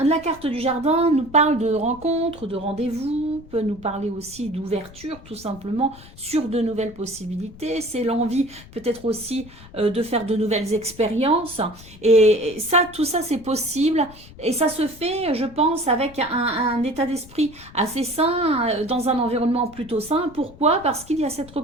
carte du jardin nous parle de rencontres, de rendez-vous, peut nous parler aussi d'ouverture, tout simplement, sur de nouvelles possibilités. C'est l'envie peut-être aussi de faire de nouvelles expériences. Et ça, tout ça, c'est possible. Et ça se fait, je pense, avec un état d'esprit assez sain, dans un environnement plutôt sain. Pourquoi? Parce qu'il y a cette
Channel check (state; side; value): noise; left; rumble, 20 dB below the sound